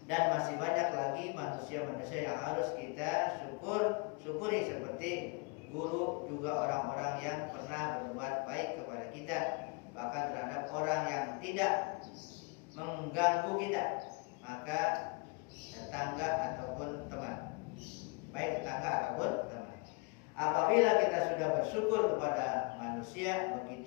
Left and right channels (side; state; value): right; quieter; 30.5 dB